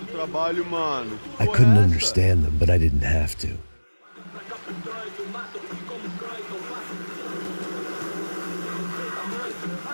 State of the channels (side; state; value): both; inverted; correlation -1.00